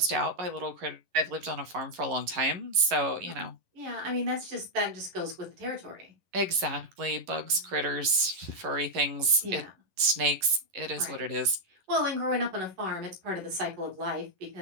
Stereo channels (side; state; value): left; late; 11 ms